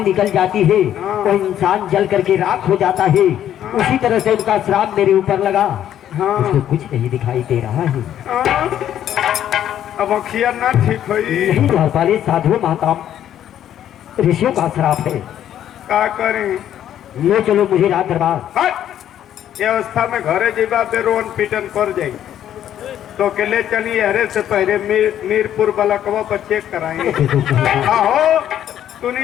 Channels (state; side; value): quieter; right; 10.8 dB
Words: निकल जाती है, हाँ। वो इंसान जल करके राख हो जाता है। उसी तरह से उनका श्राप मेरे ऊपर लगा। हाँ। उसको कुछ नहीं दिखाई दे रहा है। हाँ। अब अखिया ना ठीक हुई यही द्वारपाल साधु महात्मा ऋषियों का श्राप है। का करें ले चलो मुझे राज दरबार। हट! ये अवस्था में घरे जीवा पे रोन पीटन कर जाई तो के ले चलिए हरे से पहले मीरपुर बलकवा पर चेक कराएंगे आहो